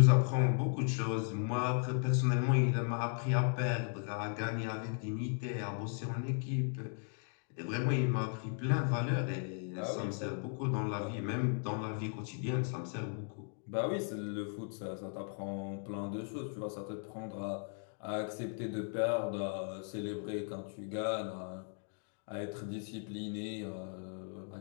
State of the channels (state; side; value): silent; right; 53 dB below the other